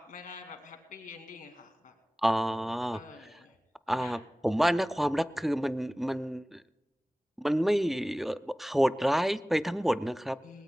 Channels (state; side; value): normal; both; correlation 0.98